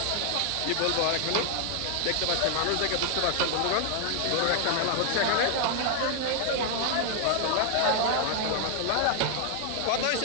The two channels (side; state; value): both; different; correlation 0.00